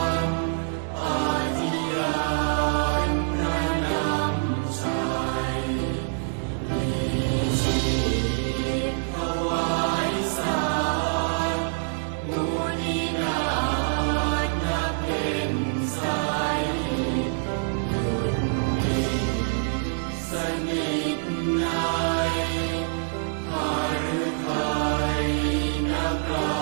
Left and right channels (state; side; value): silent; left; digital silence